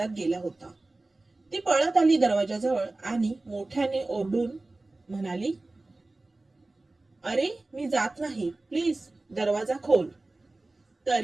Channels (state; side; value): quieter; left; 3.0 dB